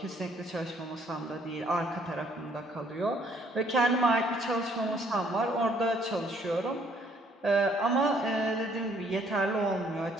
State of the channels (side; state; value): both; normal; correlation 0.64